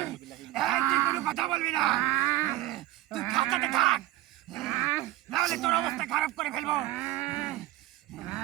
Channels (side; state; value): left; quieter; 15.8 dB